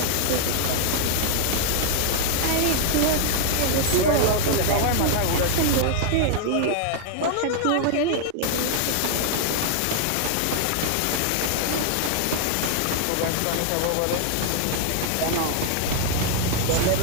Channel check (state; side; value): different; both; correlation 0.00